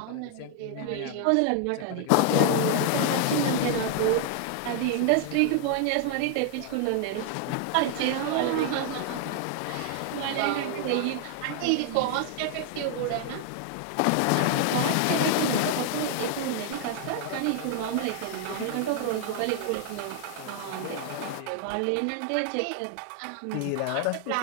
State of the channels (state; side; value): different; both; correlation 0.00